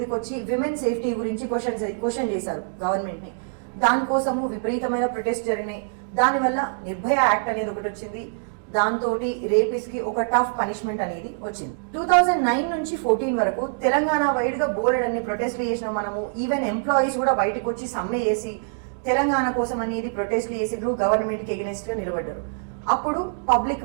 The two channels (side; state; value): left; silent; digital silence